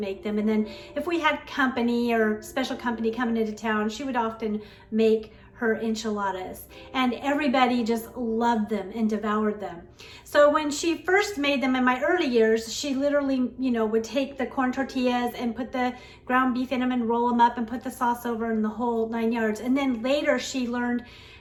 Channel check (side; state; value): both; identical; correlation 1.00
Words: them, and then if we had company or special company coming into town, she would often make her enchiladas, and everybody just loved them and devoured them. So when she first made them in my early years, she literally, would take the corn tortillas and put the ground beef in them and roll them up and put the sauce over and the whole 9 yards. And then later she learned